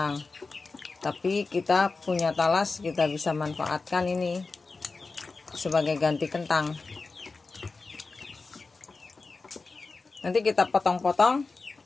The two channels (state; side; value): quieter; right; 4.0 dB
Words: Tapi kita punya talas, kita bisa manfaatkan ini sebagai ganti kentang. Nanti kita potong-potong